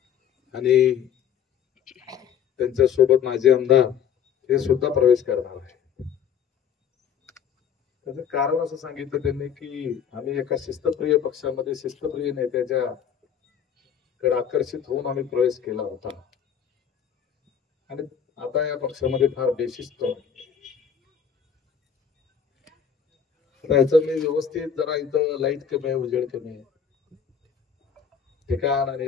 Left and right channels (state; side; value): quieter; right; 8.0 dB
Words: आणि त्यांच्या सोबत माझे आमदार हे सुद्धा प्रवेश करणार आहे. त्याचं कारण असं सांगितलं त्यांनी की आम्ही एका शिस्तप्रिय पक्षामध्ये शिस्तप्रिय नेत्याच्या कडे आकर्षित होऊन आम्ही प्रवेश केला होता आणि आता या पक्षामध्ये फार बेशिस्त याचं मी व्यवस्थित जरा इथं लाईट कमी आहे, उजेड कमी आहे, ठिकाण आणि